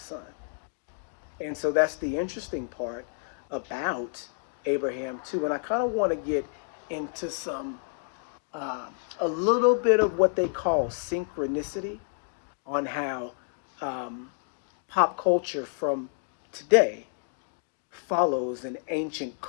And so that's the interesting part about Abraham, too. And I kind of want to get into a little bit of what they call synchronicity on how pop culture from today follows an ancient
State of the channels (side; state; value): right; silent; 58 dB below the other